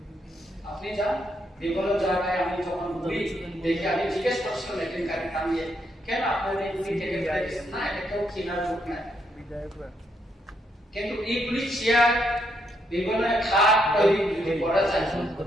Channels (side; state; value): both; normal; correlation 0.76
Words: আপনি যান বিভিন্ন জায়গায়, আমি যখন ঘুরি দেখি, আমি জিজ্ঞেস করছিলাম একদিন গাড়ি থামিয়ে, কেন আপনাদের এগুলি কেটে ফেলে দিচ্ছেন? না, এটা কেউ কেনার লোক নাই। কিন্তু এইগুলি চেয়ার বিভিন্ন খাট তৈরি যদি করা যায়,